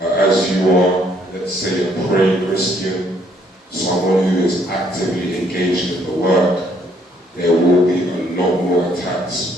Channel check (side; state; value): both; normal; correlation 0.67